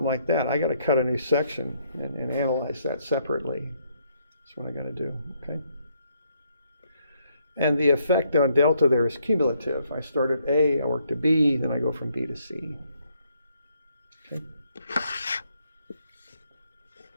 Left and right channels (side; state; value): both; inverted; correlation -0.73